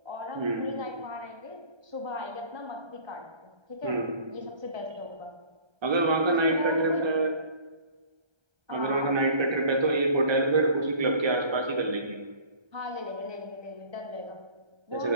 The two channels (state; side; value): late; left; 1.3 ms